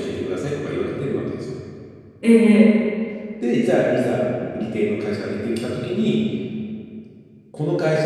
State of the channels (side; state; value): both; identical; correlation 1.00